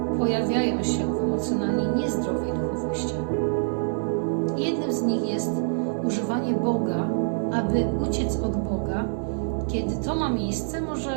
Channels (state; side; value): silent; left; digital silence